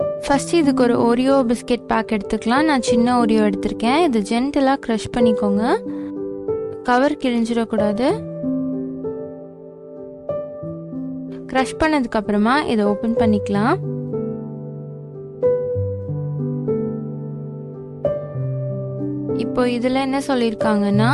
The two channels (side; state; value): both; identical; correlation 1.00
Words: ஃபர்ஸ்ட் இதுக்கு ஒரு ஓரியோ பிஸ்கெட் பேக் எடுத்துக்கலாம். நான் சின்ன ஓரியோ எடுத்திருக்கேன். இது ஜென்டலா க்ரஷ் பண்ணிக்கோங்க. கவர் கிழிஞ்சிடக்கூடாது. க்ரஷ் பண்ணதுக்கு அப்புறமா இதை ஓபன் பண்ணிக்கலாம். இப்போ இதில் என்ன சொல்லியிருக்காங்கன்னா